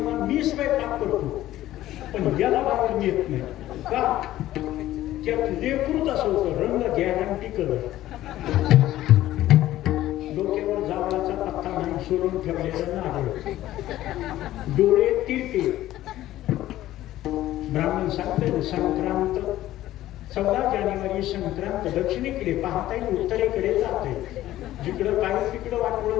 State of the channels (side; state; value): right; quieter; 14.4 dB